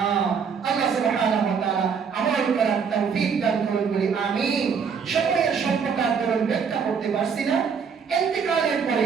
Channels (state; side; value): quieter; left; 6.3 dB